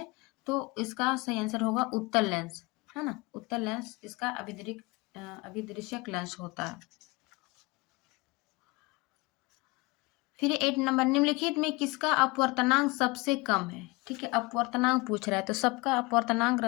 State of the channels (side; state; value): right; quieter; 24.6 dB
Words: तो इसका सही आंसर होगा उत्तल लेंस, है ना, उत्तल लेंस इसका अभिदृश्यक लेंस होता है। फिर 8 नंबर, निम्नलिखित में किसका अपवर्तनांक सबसे कम है। ठीक है, अपवर्तनांक पूछ रहा है, तो सबका अपवर्तनांक